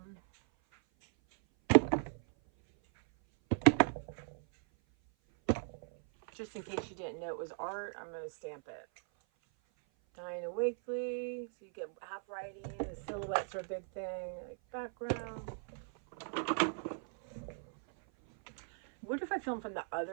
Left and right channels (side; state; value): left; silent; 53 dB below the other